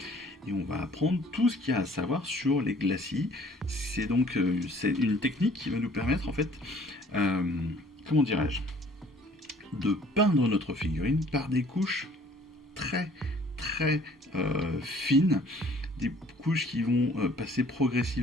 Et on va apprendre tout ce qu'il y a à savoir sur les glacis. C'est donc c'est une technique qui va nous permettre en fait, comment dirais-je, de peindre notre figurine par des couches très fines, des couches qui vont passer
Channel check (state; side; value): normal; both; correlation 0.55